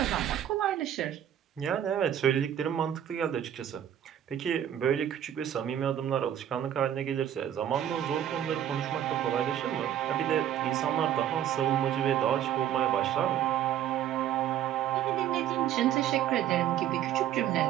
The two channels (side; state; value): left; quieter; 10.6 dB